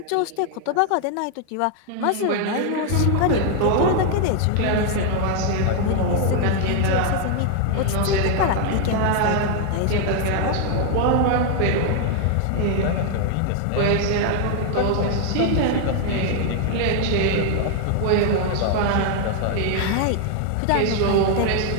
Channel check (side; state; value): both; different; correlation 0.00